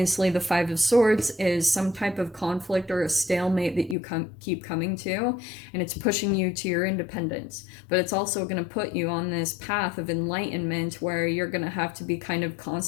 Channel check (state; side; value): drops out; right; at 4.0 s